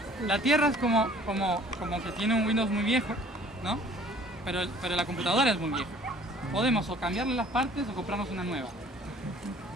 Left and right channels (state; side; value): normal; both; correlation 0.53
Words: La Tierra es como que tiene un Windows muy viejo, ¿no? Pero la computadora es muy vieja. Podemos o cambiarle las partes o comprarnos una nueva.